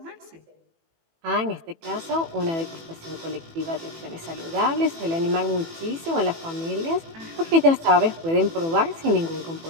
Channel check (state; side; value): late; left; 18 ms